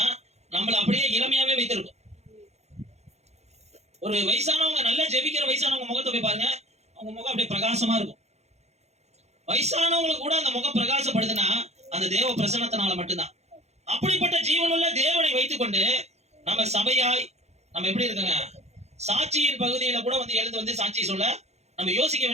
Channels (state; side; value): late; left; 0.32 ms